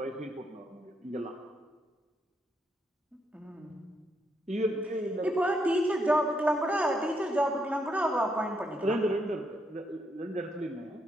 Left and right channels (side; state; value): both; normal; correlation 0.77